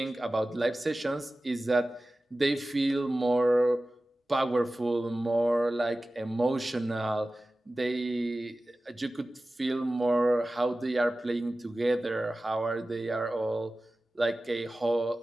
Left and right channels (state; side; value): normal; both; correlation 0.96